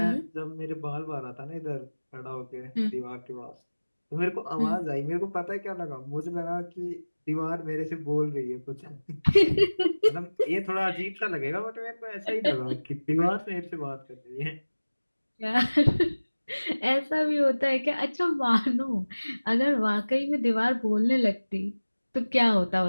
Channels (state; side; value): inverted; both; correlation -1.00